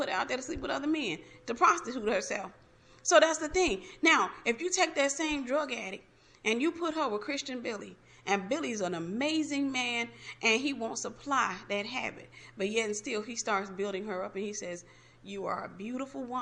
her out there to sleep with other men, to prostitute herself. So that's the thing. Now, if you take that same drug addict and you put her with Christian Billy, and Billy's an amazing man, and he won't supply that habit, but yet and still he starts building her up, and he says, you are a beautiful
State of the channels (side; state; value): both; identical; correlation 1.00